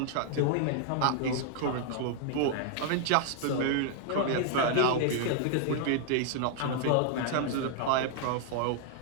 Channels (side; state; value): both; different; correlation -0.01